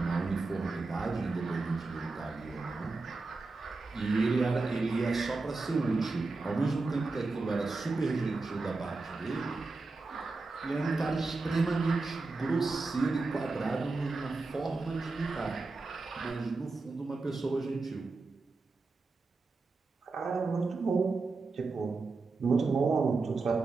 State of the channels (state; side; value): quieter; left; 3.7 dB